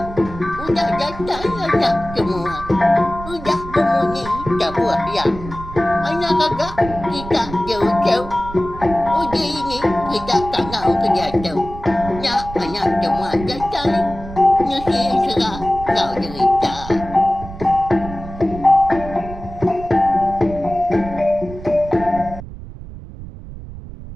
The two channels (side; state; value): right; noise; rumble, 13 dB below the sound